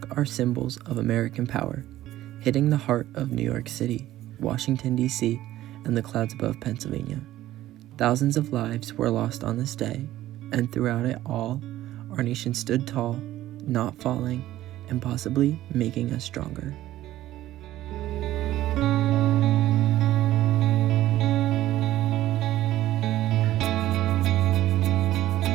our symbols of American power, hitting the heart of New York City, Washington, D.C., and the clouds above Pennsylvania. Thousands of lives were lost on this day, and throughout it all, our nation stood tall, not falling, and possibly making us stronger.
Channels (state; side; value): quieter; left; 14.5 dB